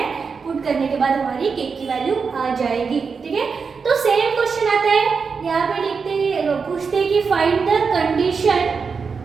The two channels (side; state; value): left; quieter; 5.4 dB